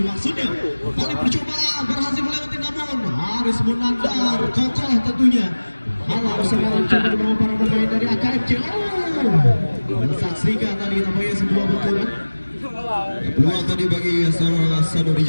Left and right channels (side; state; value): both; inverted; correlation -1.00